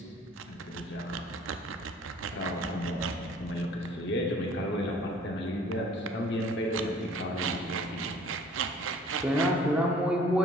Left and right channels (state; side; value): normal; both; correlation 0.53